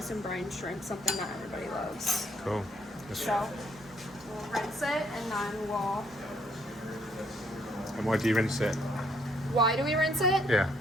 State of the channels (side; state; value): both; normal; correlation 0.69